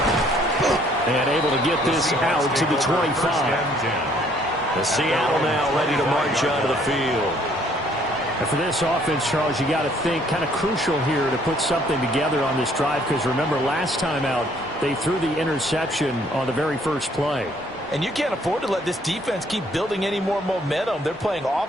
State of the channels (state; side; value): normal; both; correlation 0.63